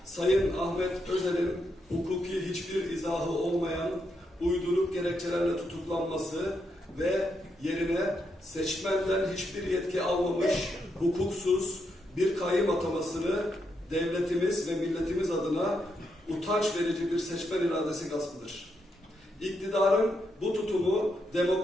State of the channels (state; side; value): normal; both; correlation 0.81